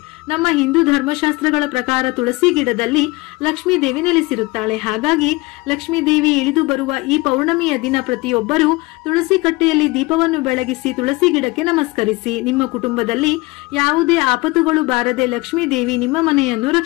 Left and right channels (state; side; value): quieter; right; 23.1 dB